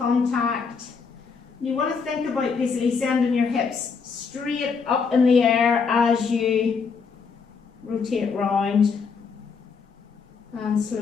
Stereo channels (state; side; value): quieter; right; 5.4 dB